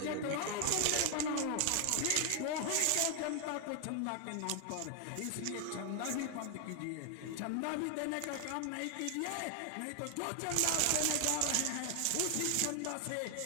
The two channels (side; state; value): both; different; correlation 0.00